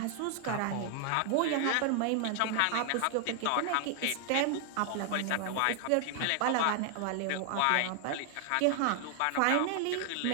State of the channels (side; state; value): both; different; correlation 0.00